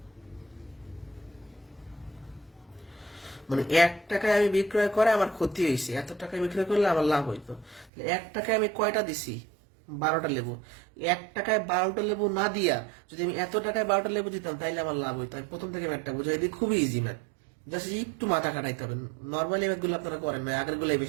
মানে 1 টাকায় আমি বিক্রয় করে আমার ক্ষতি হয়েছে, এত টাকায় বিক্রয় করলে আমার লাভ হইতো। 1 টাকায় আমি কয়টা দিছি? 12টা লেবু। 1 টাকায় 12টা লেবু না দিয়া যদি আমি এত টাকায় 12টা লেবু দিতাম তাইলে আমার লাভ হইতো। আমি প্রথম থেকে ম্যাথটা বুঝাই দিই, খুবই ইজি ম্যাথ, জাস্ট একটু মাথা খাটাইতে হবে। নর্মালি ম্যাথগুলো আপনারা করেন না, আগের গুলাই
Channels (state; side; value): drops out; left; at 7.9 s